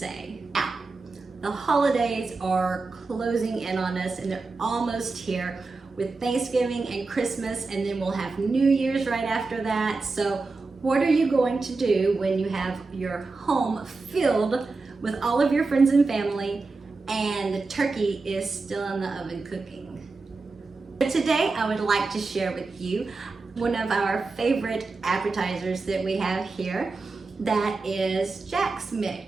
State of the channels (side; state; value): left; quieter; 3.9 dB